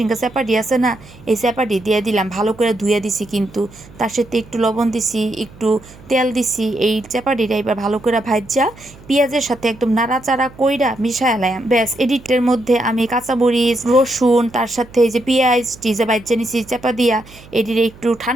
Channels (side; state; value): right; noise; hum, 22 dB below the sound